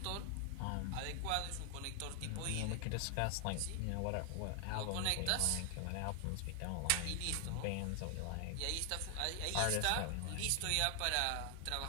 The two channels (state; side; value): different; both; correlation 0.00